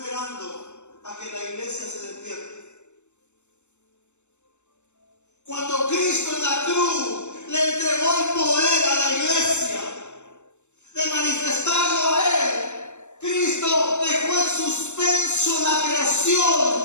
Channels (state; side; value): late; right; 0.83 ms